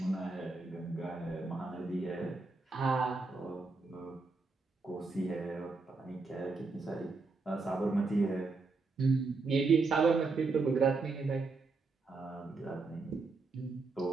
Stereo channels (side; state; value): left; quieter; 3.9 dB